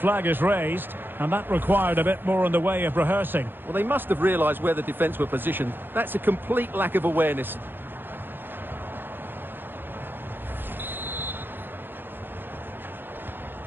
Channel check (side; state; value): left; late; 0.098 ms